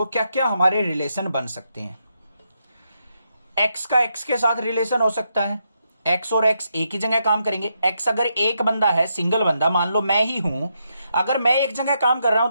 क्या क्या हमारे रिलेशन बन सकते हैं। एक्स का एक्स के साथ रिलेशन हो सकता है। एक्स और एक्स एक ही जगह काम करेंगे। एक्स अगर एक बंदा है, सिंगल बंदा, मान लो मैं ही हूं, अगर मैं एक जगह काम कर रहा हूं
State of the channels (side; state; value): both; inverted; correlation -0.81